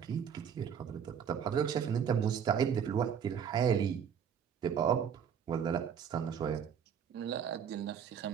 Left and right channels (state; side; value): quieter; left; 7.8 dB